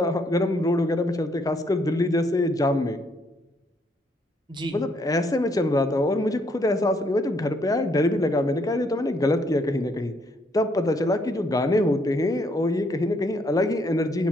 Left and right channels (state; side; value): normal; both; correlation 0.70